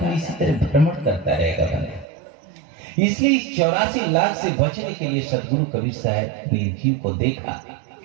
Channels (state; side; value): drops out; left; at 2.1 s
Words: इसी तरह भ्रमण करता रहेगा बनेगा। इसलिए इस 84 लाख से बचने के लिए सदगुरु कबीर साहब ने जीव को देखा